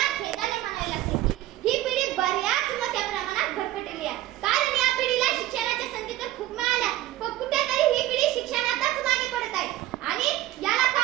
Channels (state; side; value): quieter; left; 14.8 dB